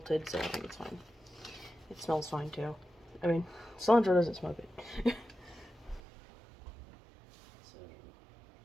so I think it's fine. It smells fine too. I mean, cilantro doesn't smell good. So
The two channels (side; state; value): left; drops out; at 6.0 s